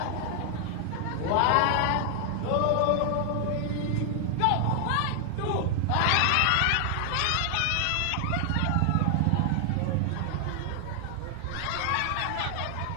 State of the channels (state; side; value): different; both; correlation 0.00